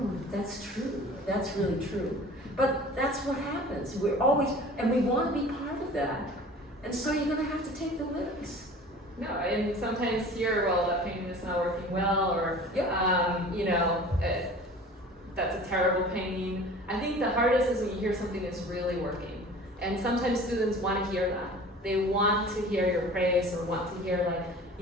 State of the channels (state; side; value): normal; both; correlation 0.43